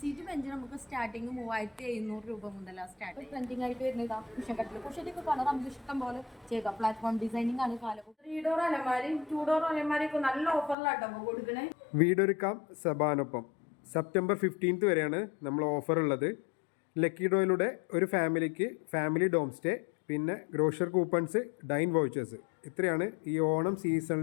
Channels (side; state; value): right; drops out; at 10.8 s